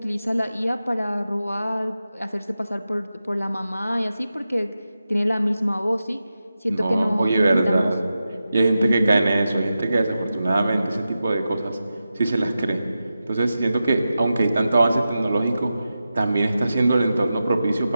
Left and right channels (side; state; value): both; inverted; correlation -0.92